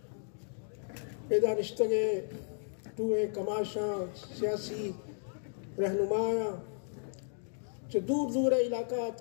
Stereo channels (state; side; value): silent; right; digital silence